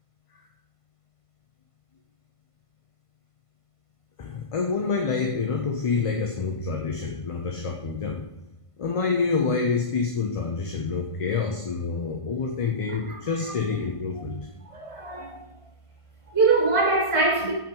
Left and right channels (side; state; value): right; late; 1.5 ms